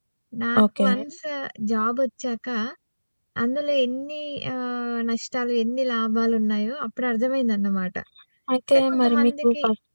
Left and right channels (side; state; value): both; inverted; correlation -1.00